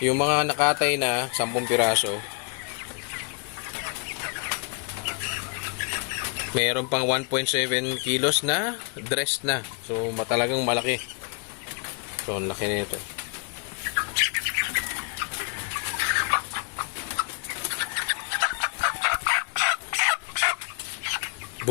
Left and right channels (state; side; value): quieter; right; 36.8 dB